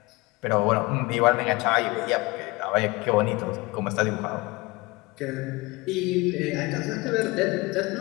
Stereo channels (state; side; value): quieter; right; 23.8 dB